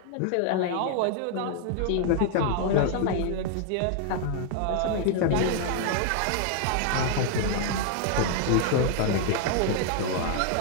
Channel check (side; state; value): both; different; correlation 0.00